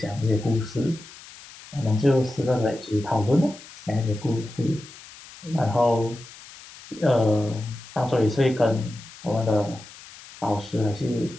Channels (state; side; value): noise; left; hiss, 18 dB below the sound